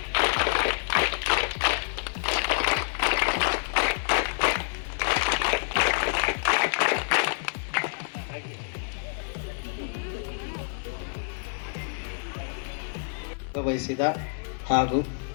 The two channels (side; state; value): right; silent; 58 dB below the other